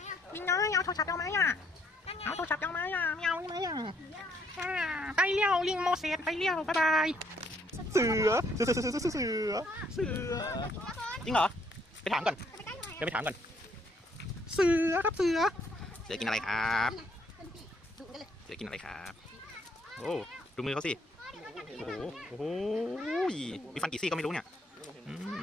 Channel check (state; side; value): normal; both; correlation 0.68